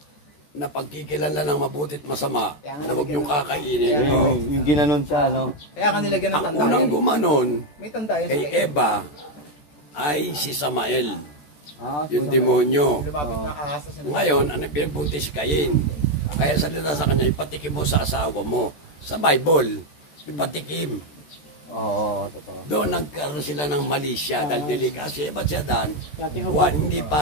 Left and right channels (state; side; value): late; right; 14 ms